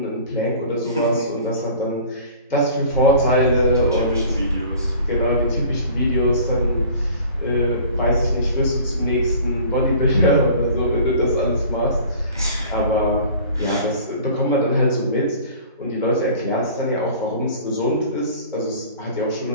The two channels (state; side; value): inverted; both; correlation -0.45